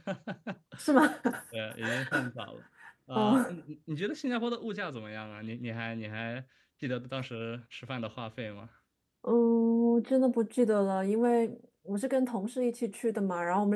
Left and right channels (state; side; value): identical; both; correlation 1.00